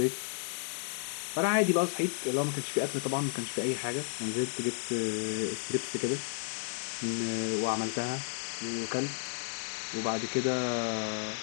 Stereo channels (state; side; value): silent; right; digital silence